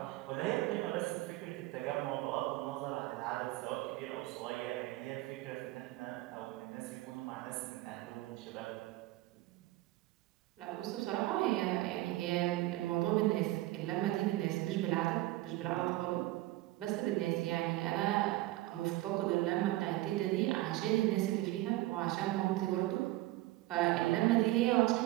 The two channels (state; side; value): quieter; left; 17.6 dB